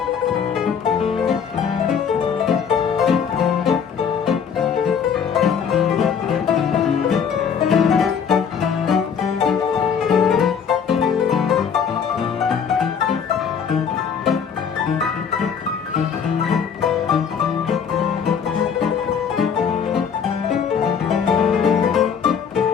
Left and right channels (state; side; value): quieter; right; 7.1 dB